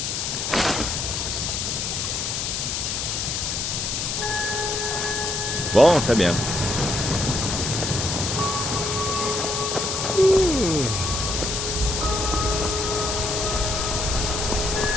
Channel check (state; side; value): noise; left; hiss, 1 dB below the sound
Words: Bon, très bien.